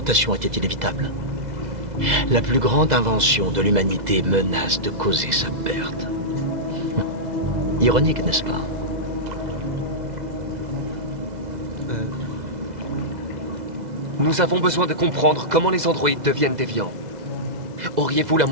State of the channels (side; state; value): left; late; 2.0 ms